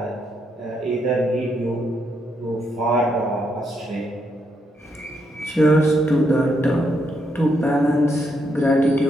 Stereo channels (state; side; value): normal; both; correlation 0.78